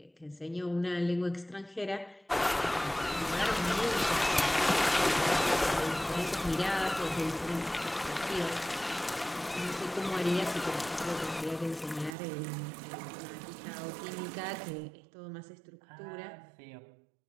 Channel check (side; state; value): left; drops out; at 12.2 s